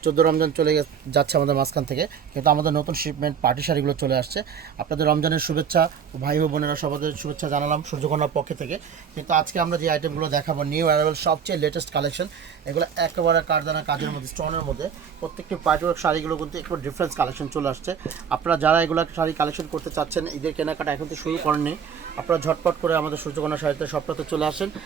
14 রমজান চলে যাচ্ছে আমাদের মাঝখান থেকে, কিন্তু আমাদের নতুন শিপমেন্ট পার্টি শাড়িগুলো চলে আসছে। আপনাদের রমজানের শুভেচ্ছা, ভাই ও বোনেরা সবাদের শুভেচ্ছা জানালাম সূর্যকন্যার পক্ষ থেকে। কিন্তু আজকে আমরা যে আইটেমগুলো দেখাবো নিউ অ্যারাইভেল সবচেয়ে লেটেস্ট কালেকশন, এগুলো একেবারে কারদানা কাজের মধ্যে, স্টোনের মধ্যে। প্রত্যেকটি পার্টিওয়ার্ক শাড়িগুলো কিন্তু একটু ডিফারেন্স কালেকশন চলে আসছে। আপনারা যারা এগুলো শাড়ি কালেকশন করতে চাচ্ছেন, ঈদের কেনাকাটা এখন তো শুরু করেননি, আপনারা ঝটপট করে আমাদের সূর্যকন্যা শাড়িতে সপ্তাহে চলে আসেন।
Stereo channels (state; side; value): quieter; left; 7.3 dB